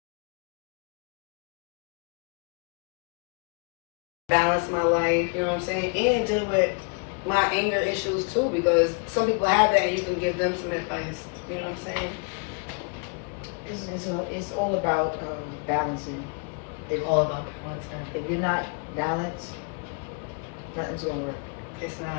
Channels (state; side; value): quieter; right; 36.3 dB